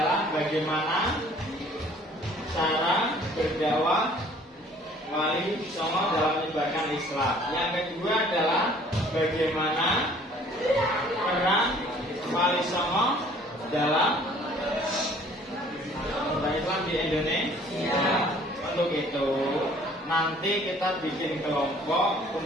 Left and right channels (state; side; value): normal; both; correlation 0.55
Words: bagaimana cara berdakwah Wali Songo dalam menyebarkan Islam. Yang kedua adalah bagaimana peran Wali Songo dalam menyebarkan Islam di Indonesia. Untuk itu nanti kita bikin kelompok,